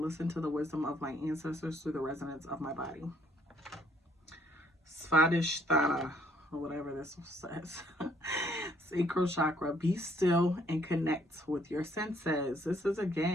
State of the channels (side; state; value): both; normal; correlation 0.66